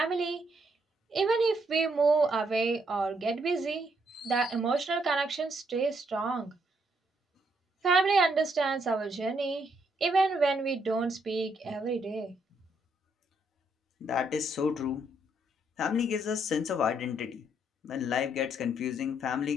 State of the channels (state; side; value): normal; both; correlation 0.74